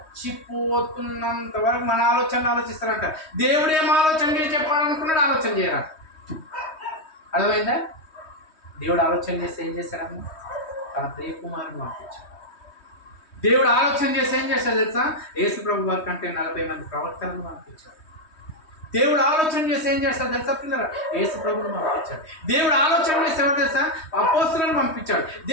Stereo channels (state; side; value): late; right; 3.2 ms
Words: వరకు మన ఆలోచనలు ఆలోచిస్తారంట. దేవుడు ఏం ఆలోచన చెప్పాలనుకున్నాడు, ఆలోచన చేయరా. అర్థమైందా? దేవుడు ఆలోచన చేస్తే ఏం చేశారమ్మా? తన ప్రియ కుమారుని పంపించాడు. దేవుడు ఆలోచన చేస్తే ఏం చేస్తాడు తెలుసా? యేసు ప్రభు వారి కంటే 40 మంది ప్రవక్తలను పంపించాడు. దేవుడు ఆలోచన చేసి ఏం చేస్తాడు తెలుసా పిల్లలు? యేసు ప్రభుని పంపించాడు. దేవుడు ఆలోచన చేసి ఎవరు తెలుసా? అపోస్తలులను పంపించాడు.